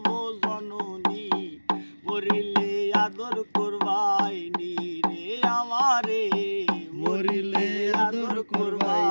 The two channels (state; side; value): inverted; both; correlation -1.00